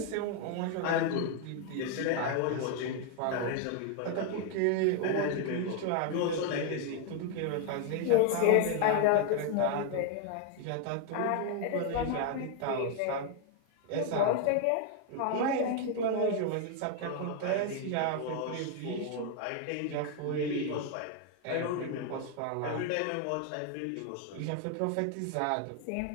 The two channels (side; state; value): both; different; correlation 0.01